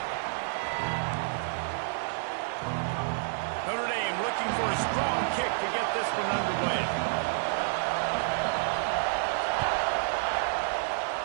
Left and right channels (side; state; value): left; silent; digital silence